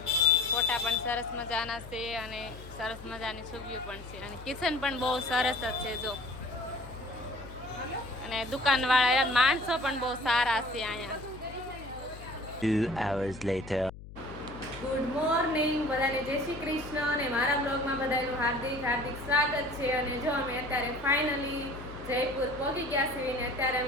ફોટા પણ સરસ મજાના છે અને સરસ મજાની છબીઓ પણ છે અને કિચન પણ બહુ સરસ જ છે જો અને દુકાનવાળા માણસો પણ બહુ સારા છે અહીંયા 2 hours later. ગુડ મોર્નિંગ બધાને જય શ્રી કૃષ્ણ અને મારા બ્લોગમાં બધાનું હાર્દિક હાર્દિક સ્વાગત છે અને જો અમે અત્યારે ફાઇનલી જયપુર પહોંચી ગયા છીએ અને અત્યારે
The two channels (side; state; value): left; noise; hum, 15 dB below the sound